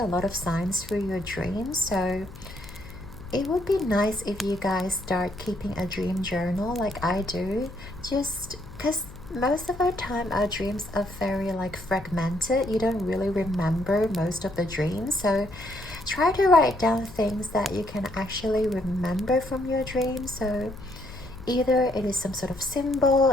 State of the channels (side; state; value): left; noise; hum, 17 dB below the sound